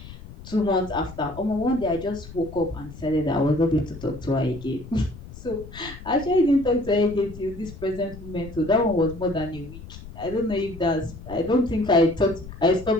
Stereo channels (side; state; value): left; noise; rumble, 15 dB below the sound